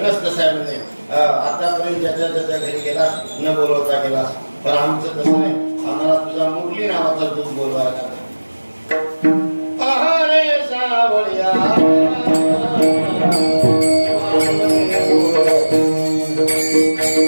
कसं आहे म्हणजे आतापर्यंत ज्याच्या घरी गेलास न बोलवता गेलास, पण आमचं तसं नाही. आम्हाला तुझा मुरली नावाचा दूध बोलवायला. अरे सावळ्या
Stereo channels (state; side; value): inverted; both; correlation -1.00